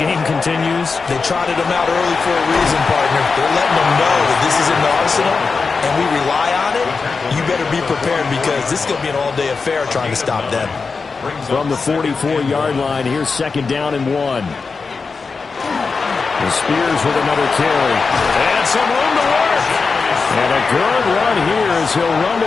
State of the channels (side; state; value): right; quieter; 4.7 dB